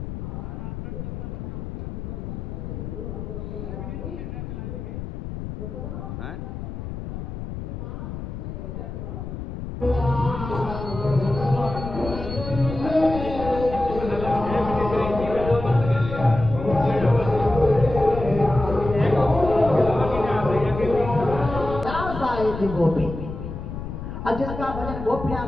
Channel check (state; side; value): noise; left; rumble, 7 dB below the sound